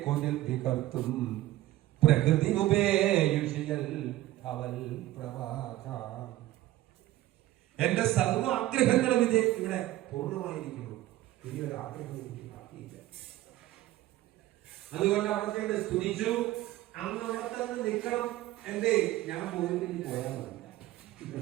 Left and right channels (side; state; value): left; quieter; 15.8 dB